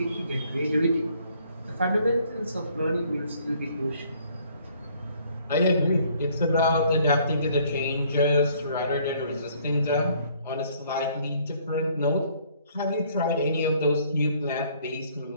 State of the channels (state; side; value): inverted; both; correlation -0.62